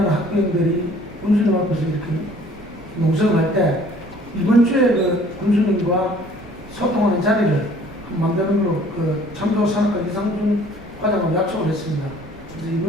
학부형들이 군수님 앞에서 이렇게 농성을 할 때 이번 주에 그 군수님과 소통하는 자리를 만드는 걸로 그 참조 산업과 이상준 과장하고 약속을 했습니다. 그래서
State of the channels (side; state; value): both; normal; correlation 0.54